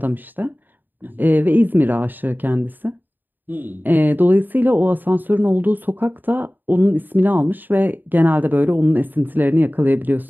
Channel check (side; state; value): left; late; 0.090 ms